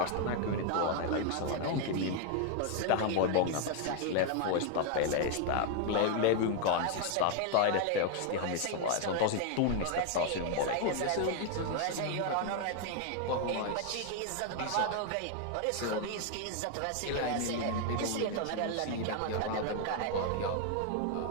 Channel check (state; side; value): different; both; correlation 0.00